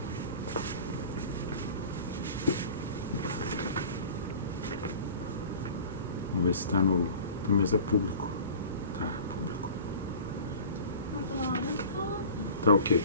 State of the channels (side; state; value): both; inverted; correlation -0.41